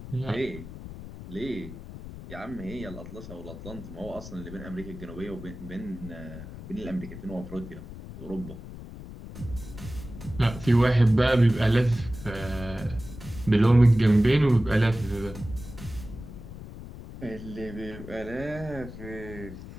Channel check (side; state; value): left; noise; rumble, 13 dB below the sound